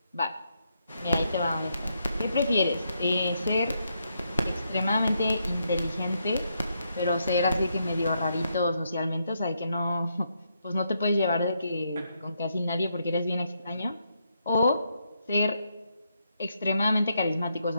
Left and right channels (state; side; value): inverted; both; correlation -0.79